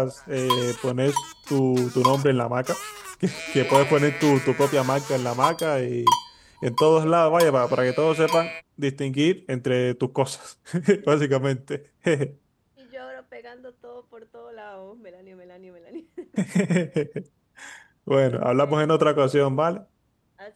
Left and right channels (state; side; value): identical; both; correlation 1.00